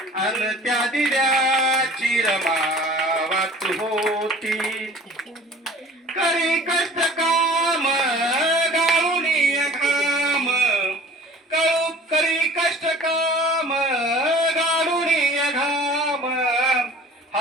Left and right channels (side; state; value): both; normal; correlation 0.46